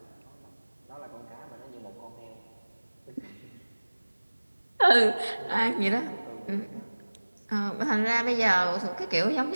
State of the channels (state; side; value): inverted; both; correlation -1.00